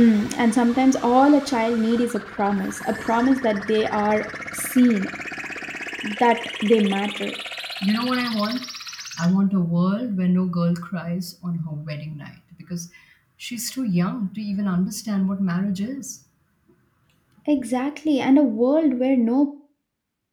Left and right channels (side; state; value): both; identical; correlation 1.00